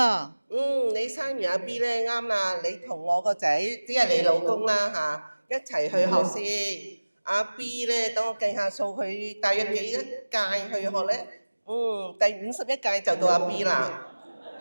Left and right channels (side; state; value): both; inverted; correlation -1.00